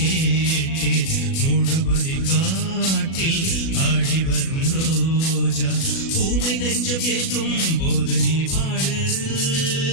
மூடுபதி காட்டில் ஆடி வரும் ரோஜா ஊமை நெஞ்சம் ஏங்கும் போது நீ பாடு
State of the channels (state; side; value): late; right; 37 ms